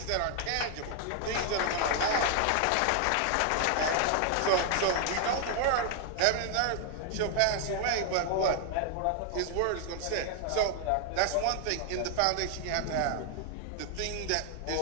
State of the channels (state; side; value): different; both; correlation 0.00